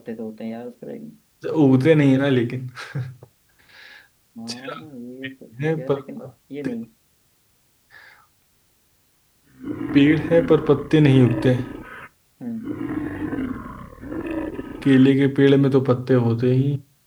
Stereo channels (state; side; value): identical; both; correlation 1.00